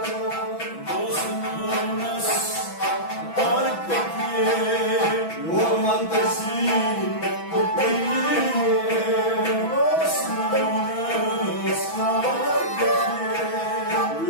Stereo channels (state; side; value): late; right; 6.1 ms